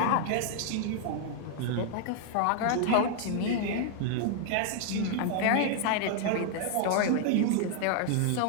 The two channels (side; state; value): both; different; correlation -0.01